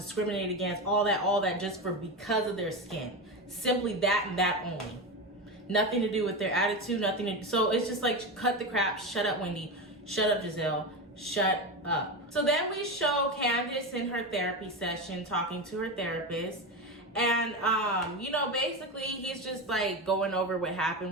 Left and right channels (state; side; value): normal; both; correlation 0.19